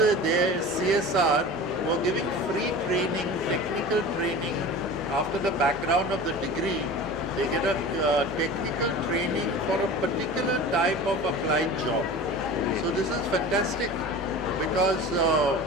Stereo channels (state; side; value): normal; both; correlation 0.36